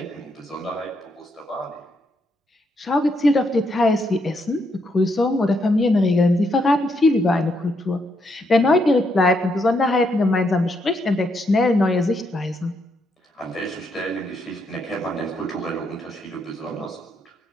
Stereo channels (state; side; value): normal; both; correlation 0.77